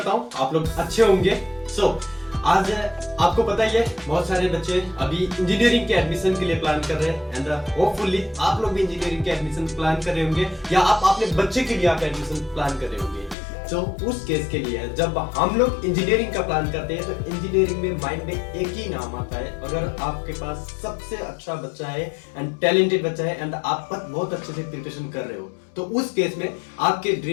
हूँ आप लोग अच्छे होंगे। आज आपको पता ही है बहुत सारे बच्चे अभी इंजीनियरिंग के एडमिशन के लिए प्लान कर रहे हैं एंड होपफुली आप लोग भी इंजीनियरिंग के एडमिशन प्लान कर रहे होंगे या आप अपने बच्चे के लिए आप एडमिशन प्लान कर रहे होंगे। तो उस केस के लिए जब हम लोग इंजीनियरिंग का प्लान करते हैं तो इंजीनियरिंग में माइंड में एक ही नाम आता है। अगर आपके पास सबसे अच्छा बच्चा है एंड टैलेंटेड बच्चा है एंड आप बहुत अच्छे से प्रिपरेशन कर रहे हो तो उस केस में आपके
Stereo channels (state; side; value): drops out; right; at 13.4 s